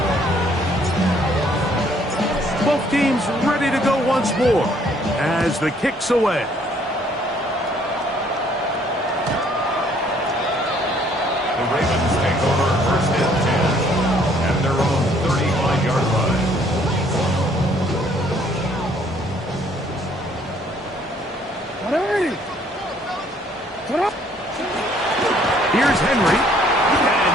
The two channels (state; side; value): normal; both; correlation 0.63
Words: Both teams ready to go once more as the kick's away. The Ravens take over first and 10 at their own 35-yard line. Ready? Get up. Here's Henry, and